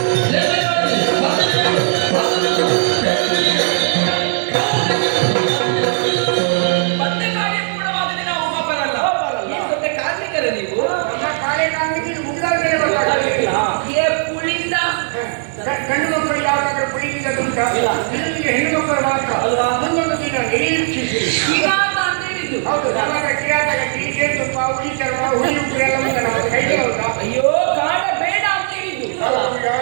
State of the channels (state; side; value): silent; left; digital silence